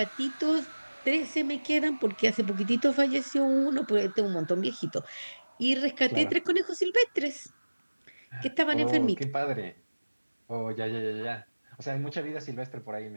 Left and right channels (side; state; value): both; inverted; correlation -1.00